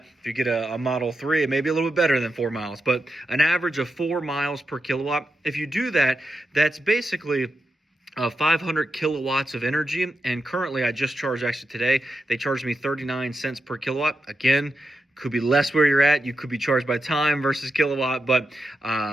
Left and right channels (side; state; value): both; normal; correlation 0.88